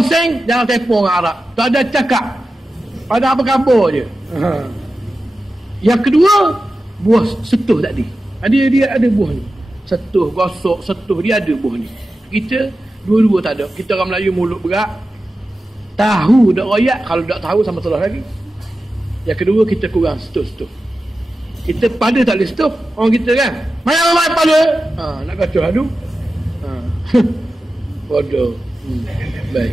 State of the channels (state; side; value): normal; both; correlation 0.93